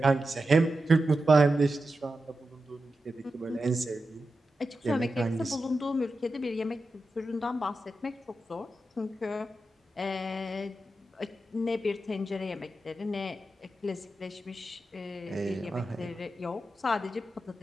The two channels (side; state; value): both; normal; correlation 0.90